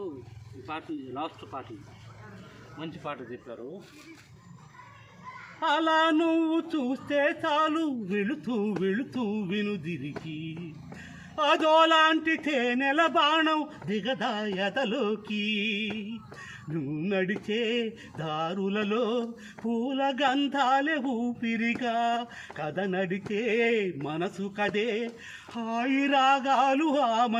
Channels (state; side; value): identical; both; correlation 1.00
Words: ఈ పాట లాస్ట్ పాట మంచి పాట చెప్పారు. అలా నువ్వు చూస్తే చాలు వెళుతూ వెళుతూ వినుదిరికి అదోలాంటి తేనెల బాణం దిగదాయతలోకి నువ్వు నడిచే దారులలో పూల గంధాలే ఊపిరిగా కథ నడిచే మనసు కదే హాయి రాగాలు